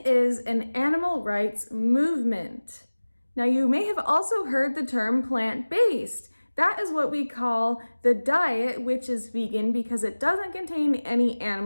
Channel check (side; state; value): both; inverted; correlation -1.00